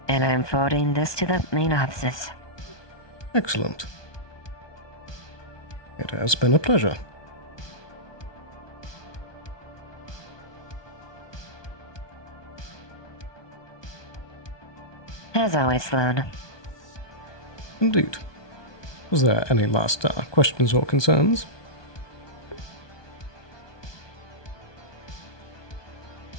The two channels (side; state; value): right; late; 1.2 ms